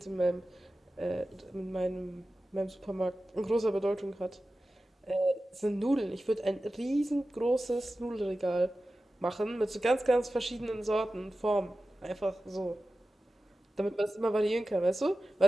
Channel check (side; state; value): both; normal; correlation 0.94